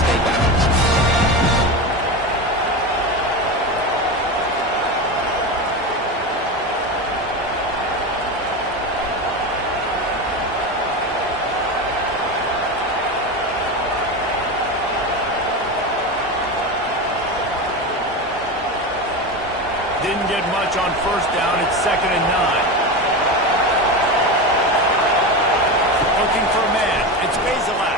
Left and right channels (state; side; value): normal; both; correlation 0.21